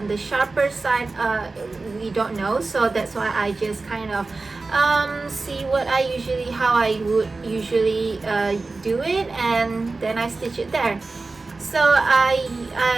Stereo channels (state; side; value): quieter; left; 3.6 dB